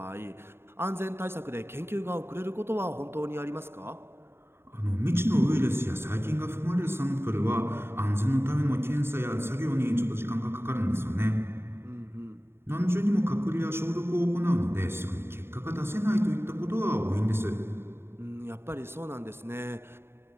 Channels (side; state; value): left; late; 0.11 ms